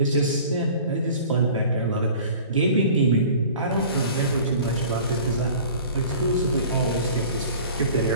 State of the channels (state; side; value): inverted; both; correlation -0.44